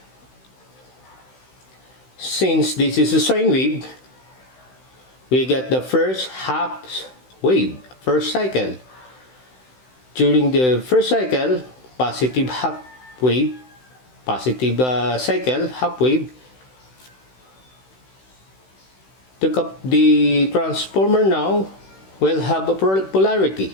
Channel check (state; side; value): late; right; 16 ms